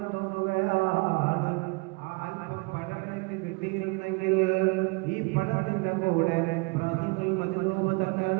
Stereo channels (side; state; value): left; quieter; 28.2 dB